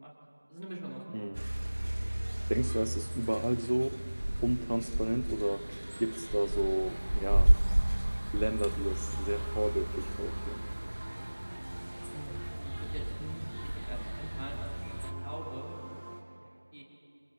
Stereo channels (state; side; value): inverted; both; correlation -1.00